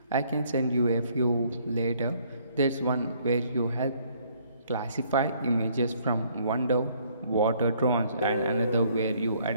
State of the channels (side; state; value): both; inverted; correlation -0.64